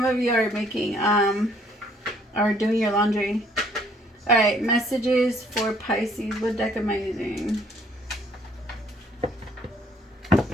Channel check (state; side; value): normal; both; correlation 0.62